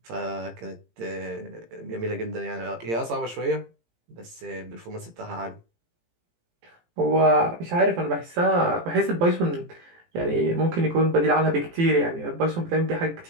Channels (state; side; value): late; left; 18 ms